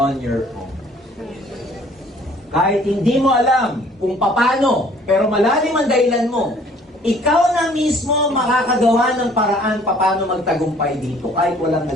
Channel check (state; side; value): normal; both; correlation 0.56